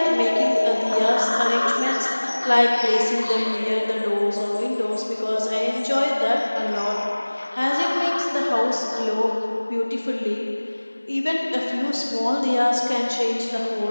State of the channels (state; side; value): inverted; both; correlation -1.00